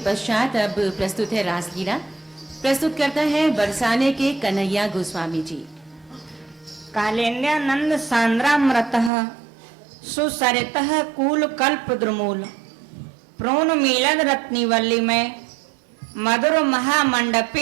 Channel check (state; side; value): drops out; left; at 9.1 s